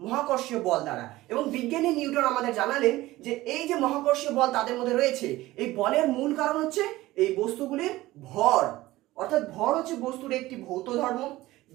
মহাকর্ষীয় বল দ্বারা। এবং বিজ্ঞানী নিউটন আমাদের জানালেন যে এই যে মহাকর্ষীয় বল তাদের মধ্যে রয়েছে, এই বলের মূল কারণ হচ্ছে এই বস্তুগুলির ভর। অর্থাৎ ভর হচ্ছে বস্তুর একটি ভৌত ধর্ম,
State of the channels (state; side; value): quieter; left; 17.5 dB